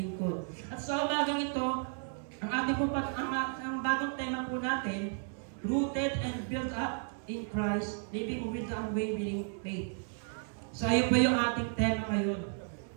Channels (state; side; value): silent; left; 55 dB below the other